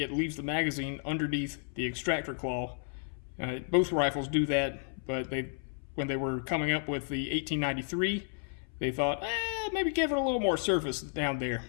leaves the magazine underneath the extractor claw. Both rifles do that, but when they were coming up with the 1893, they thought, maybe give it a little more surface down there.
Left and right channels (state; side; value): silent; right; 56 dB below the other